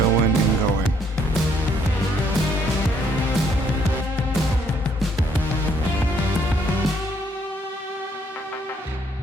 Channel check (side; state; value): both; normal; correlation 0.68